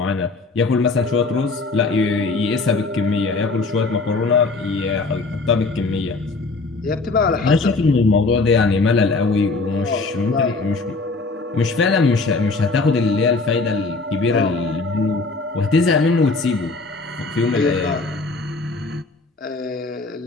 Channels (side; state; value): right; quieter; 3.8 dB